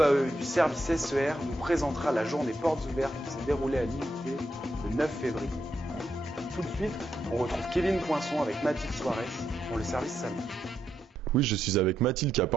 du service SER nous présentera la journée portes ouvertes qui s'est déroulée à l'IUT le 9 février. Tout de suite, on retrouve Kevin Poinçon avec Mathilde Soares pour le service salon. Oui, je suis avec Mathilde qui a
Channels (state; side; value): normal; both; correlation 0.82